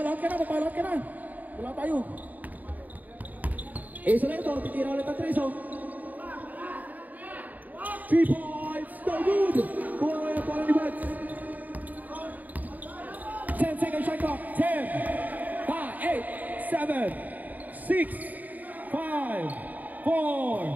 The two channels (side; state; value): left; late; 0.080 ms